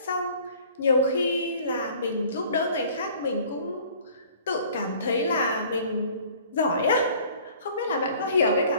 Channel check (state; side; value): inverted; both; correlation -0.51